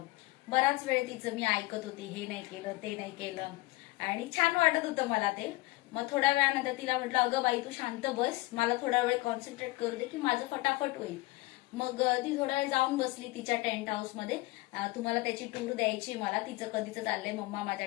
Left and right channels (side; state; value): right; quieter; 21.1 dB